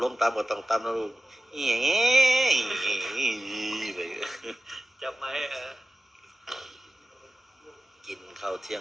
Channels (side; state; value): both; normal; correlation 0.96